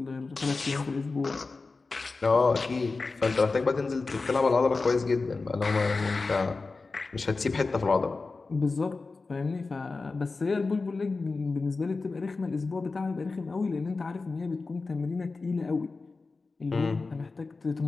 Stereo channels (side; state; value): right; quieter; 3.9 dB